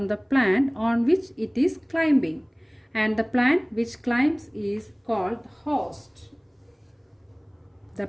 the plant on which it is climbing. And the plant which climbs is called the host. The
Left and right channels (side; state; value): both; identical; correlation 1.00